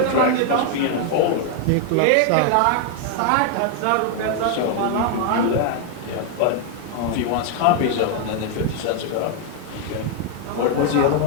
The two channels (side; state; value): both; different; correlation 0.00